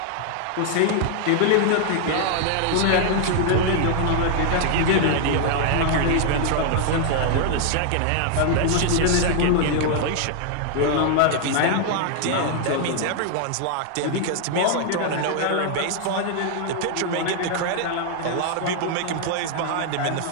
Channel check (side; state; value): both; different; correlation 0.00